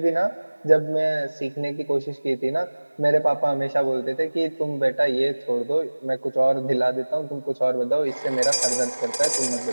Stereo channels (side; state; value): both; inverted; correlation -1.00